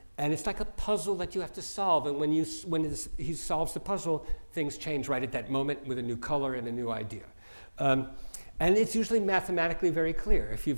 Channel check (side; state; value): both; inverted; correlation -1.00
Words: and it's like a puzzle that you have to solve, and when he solves the puzzle, things change right at that moment with a new color and a new idea. And it's usually mathematically very clear. If